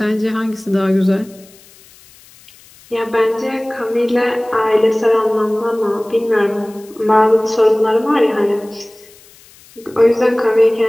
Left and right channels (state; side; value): noise; left; hiss, 26 dB below the sound